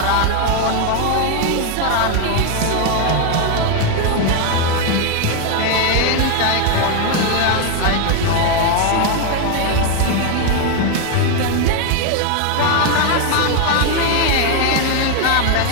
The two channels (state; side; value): different; both; correlation 0.01